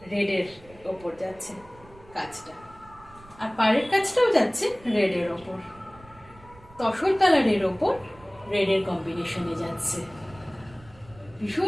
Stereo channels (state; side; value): noise; right; rumble, 23 dB below the sound